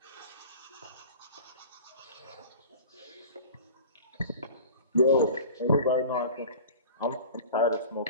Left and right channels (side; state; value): both; inverted; correlation -0.39